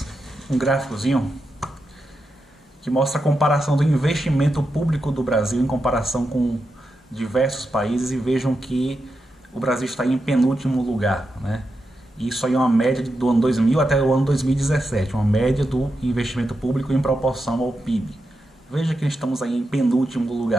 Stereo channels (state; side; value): normal; both; correlation 0.87